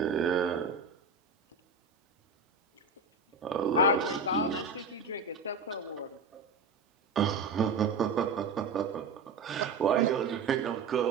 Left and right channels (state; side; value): quieter; left; 4.2 dB